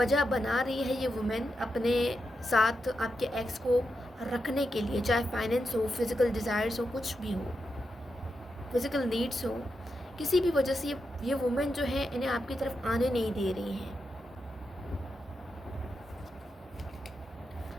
बना रही है ये वुमेन अपने साथ आपके एक्स को रखने के लिए, चाहे फाइनेंस हो, फिज़िकल डिज़ायर्स हो, कुछ भी हो, फिज़िकल नीड्स हो, किसी भी वजह से ये वुमेन जो है इन्हें आपकी तरफ आने नहीं दे रही हैं।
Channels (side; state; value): both; normal; correlation 0.86